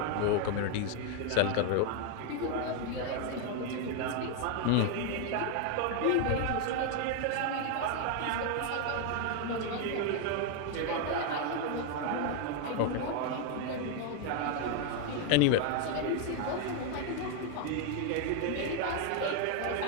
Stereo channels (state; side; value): different; both; correlation 0.00